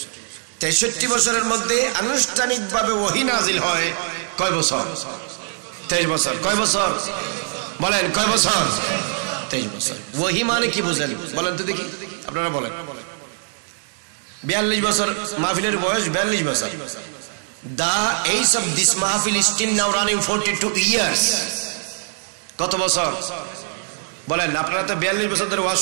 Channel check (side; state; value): left; silent; 61 dB below the other